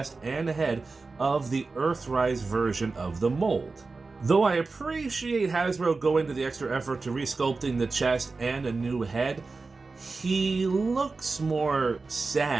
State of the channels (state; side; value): quieter; left; 4.0 dB